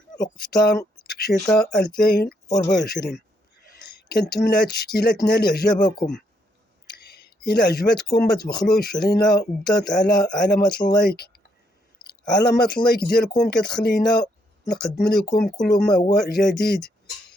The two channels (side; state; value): both; normal; correlation 0.74